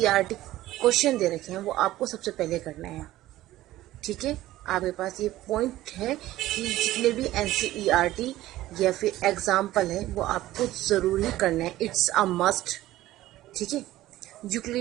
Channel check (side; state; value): left; quieter; 15.6 dB